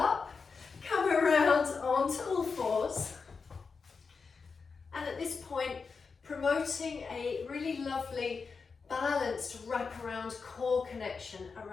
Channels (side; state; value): right; quieter; 5.0 dB